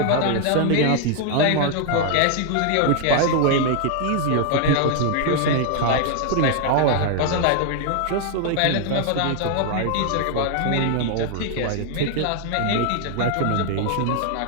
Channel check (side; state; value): both; different; correlation 0.00